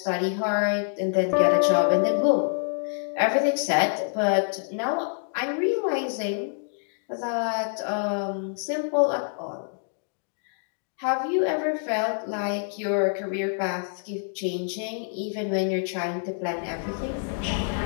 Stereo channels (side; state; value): right; silent; digital silence